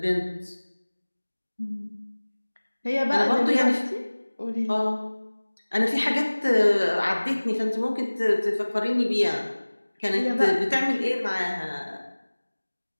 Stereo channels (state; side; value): inverted; both; correlation -1.00